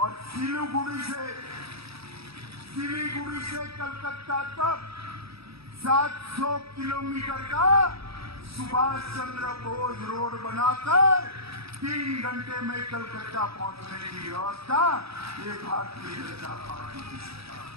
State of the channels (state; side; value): late; left; 0.77 ms